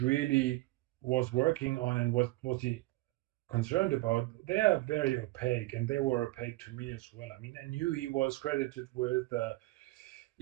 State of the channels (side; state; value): left; quieter; 19.7 dB